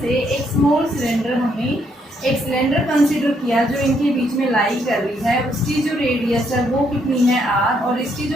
से एक स्मॉल सिलेंडर, हमने एक सिलेंडर कंसीडर किया जो इनके बीच में लाई कर रही है, उसकी जो रेडियस है वो कितनी है r, और इसकी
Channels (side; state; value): both; normal; correlation 0.73